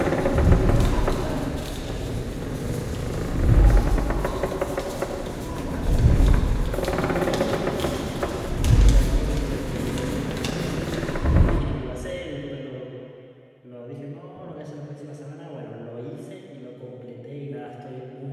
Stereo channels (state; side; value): identical; both; correlation 1.00